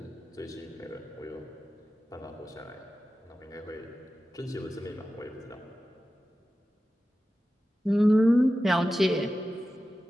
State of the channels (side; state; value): both; normal; correlation 0.94